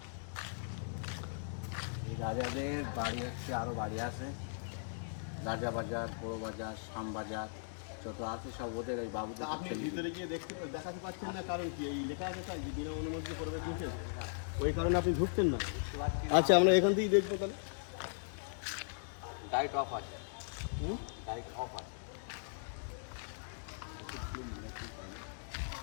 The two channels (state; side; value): silent; right; digital silence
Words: এই রাজাদের বাড়ি হচ্ছে আরও বাড়ি আছে রাজা বাজার বড় বাজার শাম বাজার যত আছে সব ওদের এই বাবুদের আপনি ভিতরে গিয়ে দেখাতে পাচ্ছেন না, কারণ কি এই লেখা আছে তাই যে বিনা অনুমতি প্রবেশ নিষেধ, ওই কারণে আপনি ঢুকছেন না। আচ্ছা, আমরা এখান থেকেই দেখবো তাহলে। লাইট অফ আছে হুম? লাইট অফ আছে